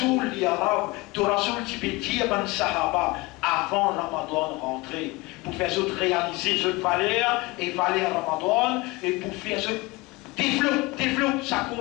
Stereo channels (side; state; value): right; quieter; 23.1 dB